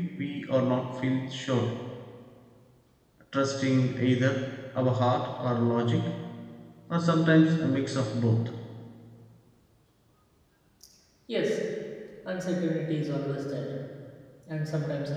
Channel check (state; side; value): identical; both; correlation 1.00